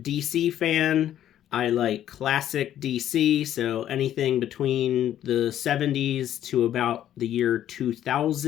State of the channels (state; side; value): quieter; right; 11.4 dB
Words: DC fan. I like classic DC, so anything between the 70s to about the year